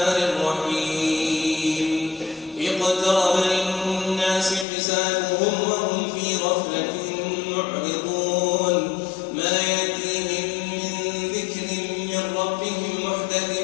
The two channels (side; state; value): right; drops out; at 4.7 s